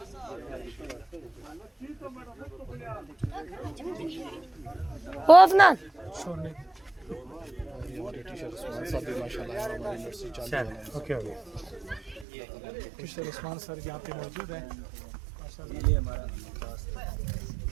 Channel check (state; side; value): drops out; left; at 12.2 s